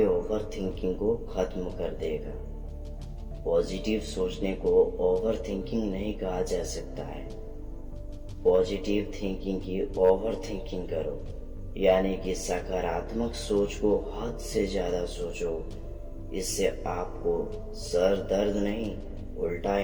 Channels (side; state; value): both; identical; correlation 1.00